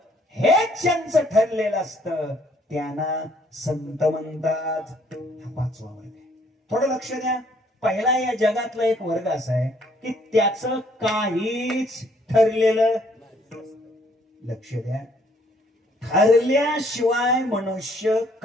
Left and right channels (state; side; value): normal; both; correlation 0.64